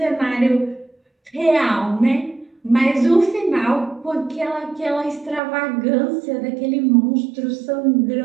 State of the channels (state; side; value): drops out; left; at 5.4 s